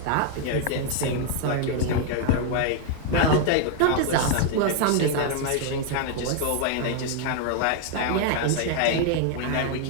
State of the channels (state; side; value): different; both; correlation 0.00